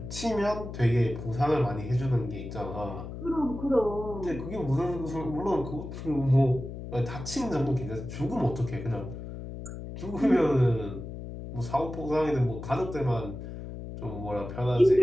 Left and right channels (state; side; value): noise; left; hum, 9 dB below the sound